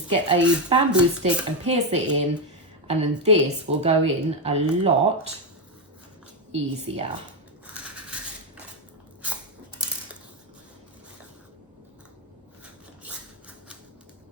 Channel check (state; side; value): normal; both; correlation 0.07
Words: get a bamboo stick and pierce it in, and then this will go in a lot easier.